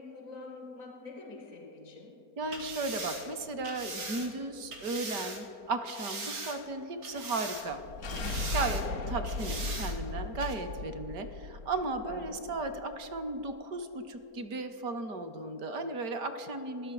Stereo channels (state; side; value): late; left; 4.4 ms